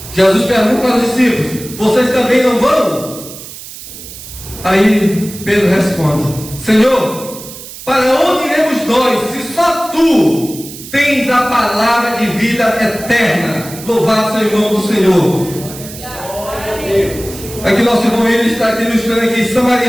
Jesus pergunta para os discípulos: vocês também não vão? Aí Pedro responde: Senhor, para onde iremos nós, se só Tu tens a palavra de vida eterna? Louvado seja o nome do Senhor. Aqui nosso irmão ele está aqui ilustrando aqui.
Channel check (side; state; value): right; noise; hiss, 14 dB below the sound